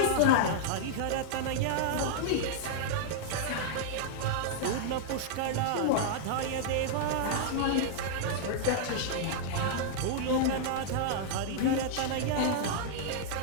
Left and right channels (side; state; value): both; different; correlation -0.01